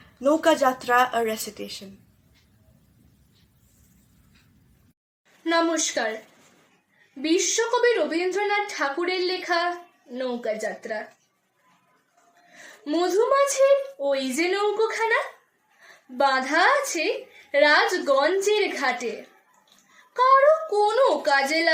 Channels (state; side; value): identical; both; correlation 1.00